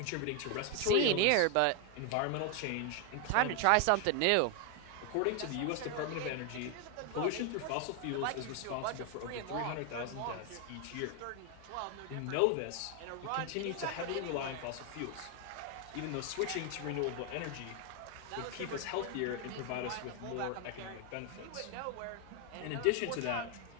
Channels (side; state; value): both; different; correlation 0.01